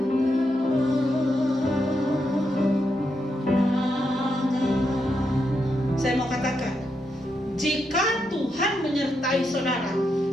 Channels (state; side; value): normal; both; correlation 0.82